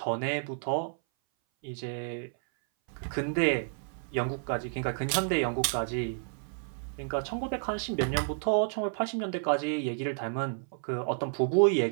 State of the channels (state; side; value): silent; left; 57 dB below the other